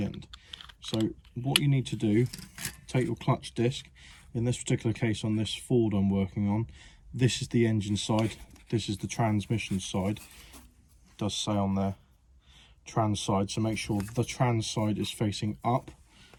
end. So what you need to do, take your clutch disc. In this particular case, on this Ford I'm working on, this is the engine side, this is the transmission side. It does say on there trans side, so make sure the trans side is facing up.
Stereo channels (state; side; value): identical; both; correlation 1.00